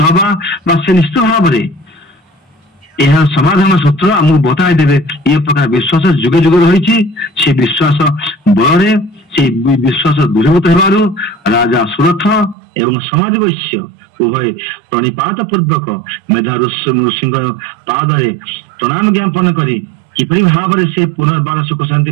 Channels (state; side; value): drops out; left; at 12.6 s